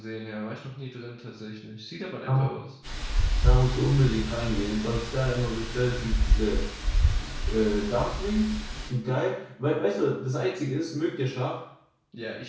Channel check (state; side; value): identical; both; correlation 1.00